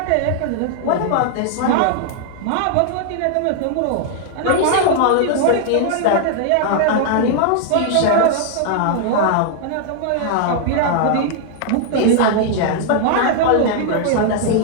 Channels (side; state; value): both; different; correlation 0.00